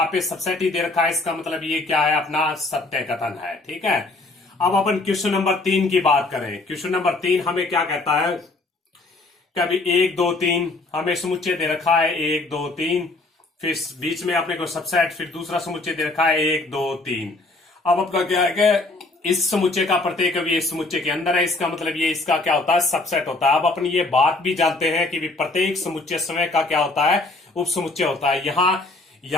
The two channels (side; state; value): right; quieter; 3.1 dB